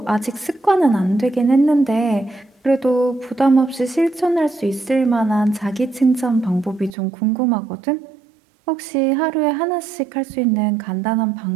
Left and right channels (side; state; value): left; drops out; at 7.0 s